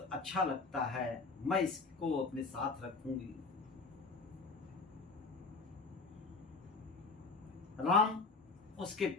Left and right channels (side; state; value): right; quieter; 4.1 dB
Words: अच्छा लगता है, मैं इसको अपने साथ रखूंगी। राम उसके